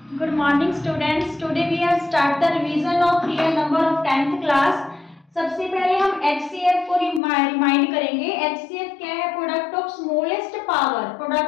Good morning students. Today we have start the revision of real number of 10th class. सबसे पहले हम HCF को remind करेंगे. HCF क्या है? Product of smallest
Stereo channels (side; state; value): right; drops out; at 7.2 s